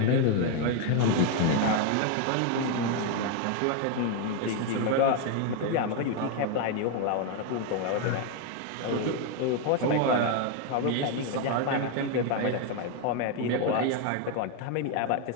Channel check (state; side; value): different; both; correlation 0.01